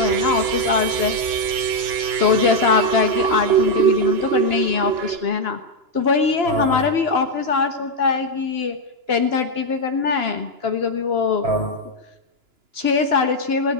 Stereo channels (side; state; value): left; late; 2.9 ms